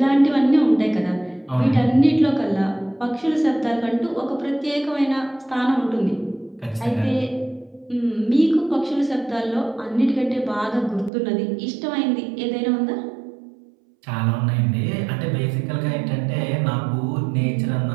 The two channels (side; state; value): left; drops out; at 11.1 s